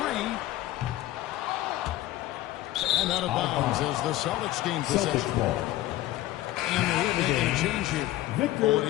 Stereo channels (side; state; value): right; quieter; 15.6 dB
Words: 3. And out of bounds as the Celtics gain possession. And the Heat making a change here.